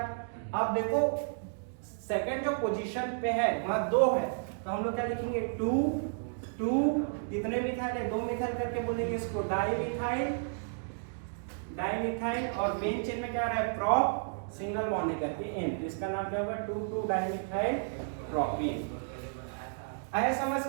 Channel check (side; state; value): left; silent; digital silence